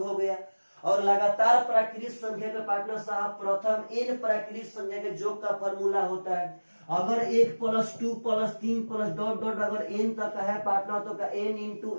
हो गया। और लगातार प्राकृतिक संख्या के पार्टनर साहब प्रथम n प्राकृतिक संख्या के योग का फॉर्मूला होता है। अगर 1 + 2 + 3 + डॉट डॉट अगर n तक है पार्टनर, तो का n ×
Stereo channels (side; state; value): both; inverted; correlation -1.00